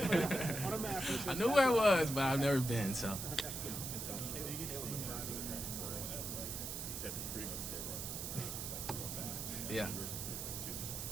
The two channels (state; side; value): noise; right; hiss, 5 dB below the sound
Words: On a map. I knew where it was, but I've never been, so. Yeah.